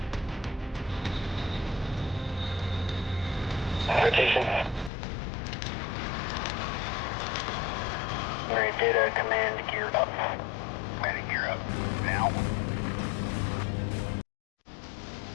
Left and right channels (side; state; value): right; drops out; at 4.9 s